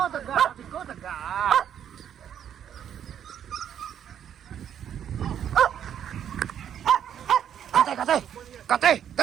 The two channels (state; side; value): quieter; left; 9.4 dB